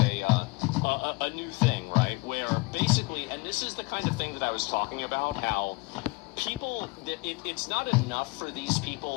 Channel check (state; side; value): quieter; right; 25.9 dB